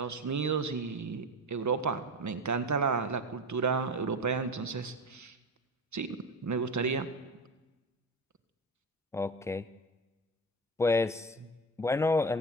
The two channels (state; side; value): normal; both; correlation 0.25